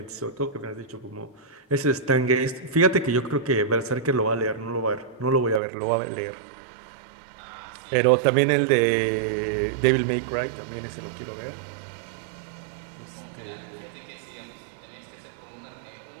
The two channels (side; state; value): left; drops out; at 5.6 s